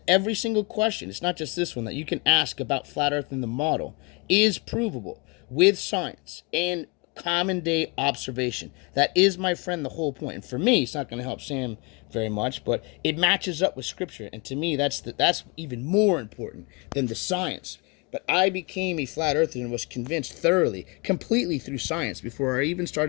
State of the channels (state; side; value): quieter; right; 29.3 dB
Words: every single question, it's not just this one, that you can ask about flat Earth and the model, is provable with science and common day observation. That is, my friend, the whole point. And for me, it's not going to help Sam very much, but it matches up with scripture. And to me, that's even more important than the science. But I became a flat earther and was convinced thoroughly, completely through science, before I even